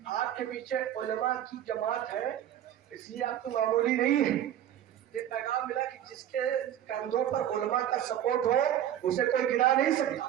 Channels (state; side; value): quieter; left; 11.1 dB